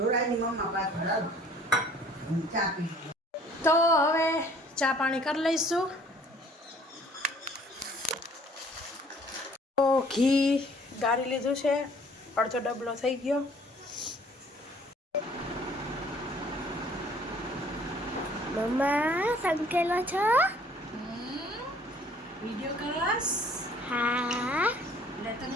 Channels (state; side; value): normal; both; correlation 0.55